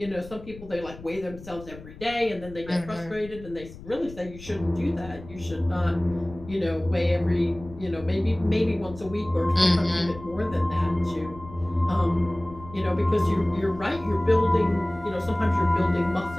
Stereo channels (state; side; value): noise; left; rumble, 17 dB below the sound